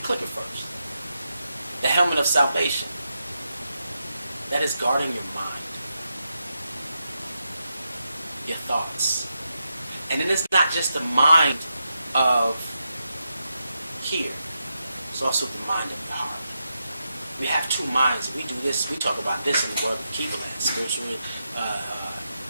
click at first. The helmet of salvation. That is guarding your mind, your thoughts. And then it's not just the mind of here. It's also the mind of the heart. We have two minds. We do this. We talk about this in the world of Kivaland, spiritual,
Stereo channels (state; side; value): inverted; both; correlation -0.86